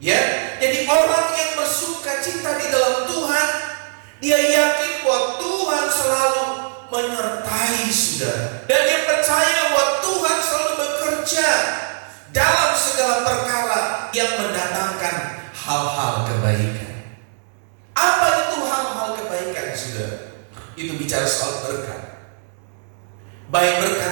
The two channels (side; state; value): left; silent; digital silence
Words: Ya, jadi orang yang bersukacita di dalam Tuhan, dia yakin bahwa Tuhan selalu menyertai saudara, dan dia percaya bahwa Tuhan selalu bekerja dalam segala perkara yang mendatangkan hal-hal kebaikan. Apa itu hal-hal kebaikan, saudara? Itu bicara soal berkat, baik berkat